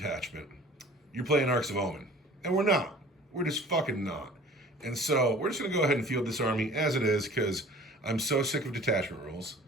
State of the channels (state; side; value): normal; both; correlation 0.47